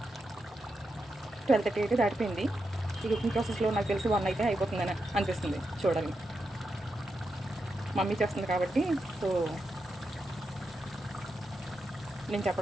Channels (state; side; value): normal; both; correlation 0.86